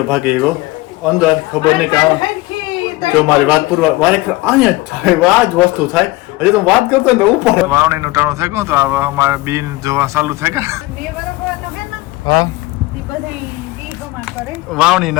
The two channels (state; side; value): quieter; right; 20.2 dB